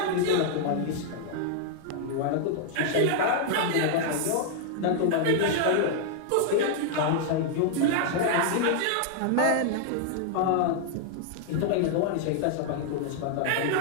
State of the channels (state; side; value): different; both; correlation -0.01